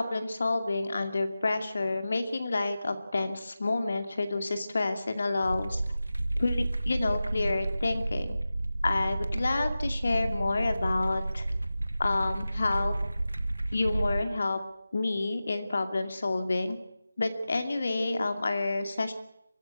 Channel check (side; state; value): both; inverted; correlation -0.94